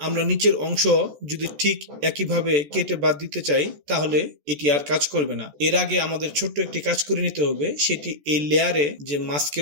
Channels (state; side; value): late; left; 14 ms